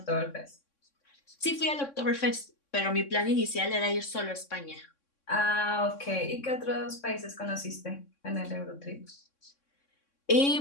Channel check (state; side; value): late; right; 3.6 ms